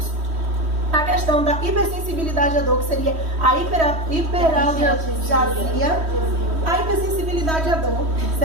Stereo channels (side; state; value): left; late; 3.1 ms